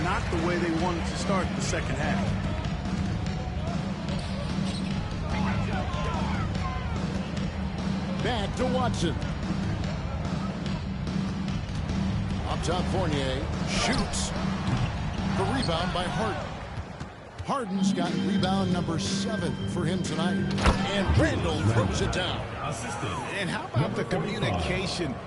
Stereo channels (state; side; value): identical; both; correlation 1.00